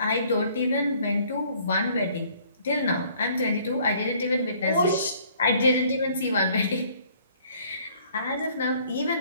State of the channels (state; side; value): inverted; both; correlation -0.59